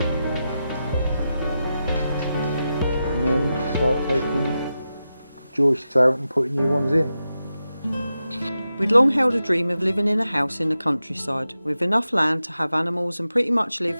and then start taking joists out and putting new ones in. We'd long held a dream of living in a house in the countryside, with enough land to have animals and pretty much live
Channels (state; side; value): inverted; both; correlation -0.90